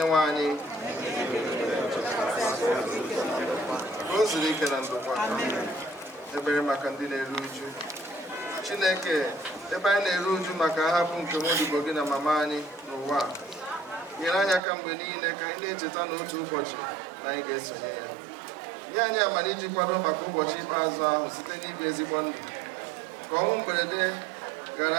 nwe anyị ka o zuru ike na ndokwa ebere maka ndị na-eru uju Chineke ebe anyị na-eru uju maka ahapụ nke nwaodibo gị na mama anyị n'ụwa nyere anyị aka mgbe niile ka anyị na-echeta n'otu ụbọchị na anyị ga-esonye ya nye anyị amara iji kwado maka ụbọchị ikpeazụ ahụ site n'ibi ezigbo ndụ ka ọnwụ mberede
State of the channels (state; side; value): drops out; left; at 14.6 s